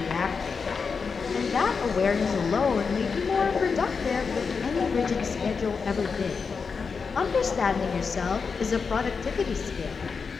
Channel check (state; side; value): quieter; right; 5.3 dB